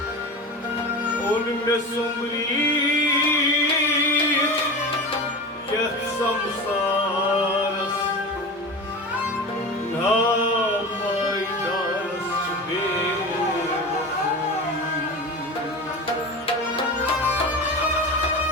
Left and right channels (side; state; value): both; normal; correlation 0.28